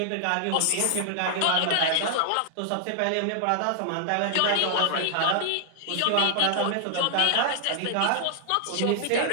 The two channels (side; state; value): both; different; correlation -0.01